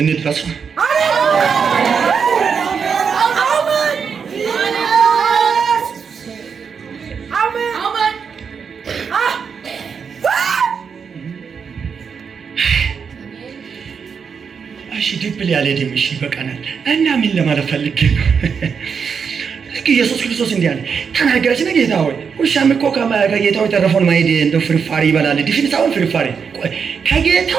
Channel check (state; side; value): quieter; left; 6.3 dB